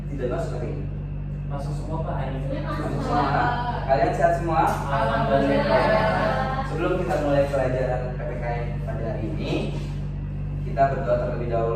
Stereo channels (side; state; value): both; identical; correlation 1.00